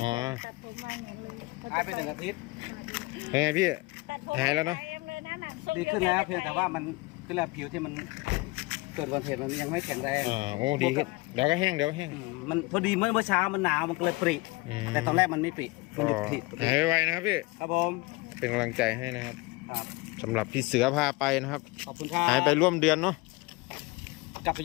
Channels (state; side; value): quieter; right; 23.8 dB